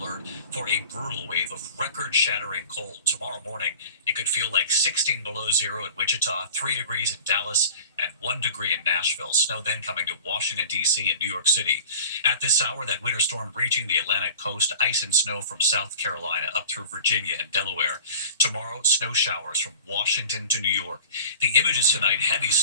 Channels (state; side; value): inverted; both; correlation -0.42